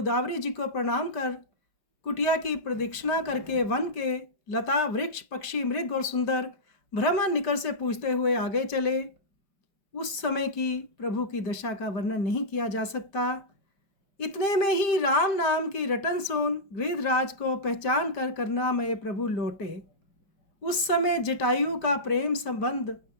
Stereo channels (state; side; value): late; right; 5.1 ms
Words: जी को प्रणाम कर कुटिया की प्रदक्षिणा करके वन के लता वृक्ष पक्षी मृग और सुंदर भ्रमण निकट से पूछते हुए आगे चले। उस समय की प्रभु की दशा का वर्णन नहीं किया जा सकता। इतने में ही राम नाम की रटन सुन गिरिधराज को पहचान कर करुणामय प्रभु लौटे। उस समय जटायु का प्रेम संबंध